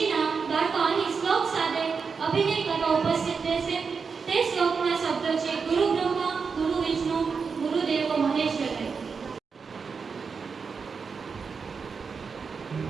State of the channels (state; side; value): quieter; left; 5.4 dB